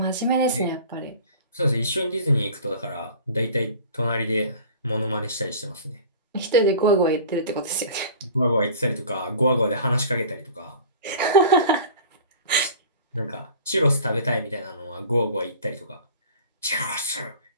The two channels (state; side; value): inverted; both; correlation -0.42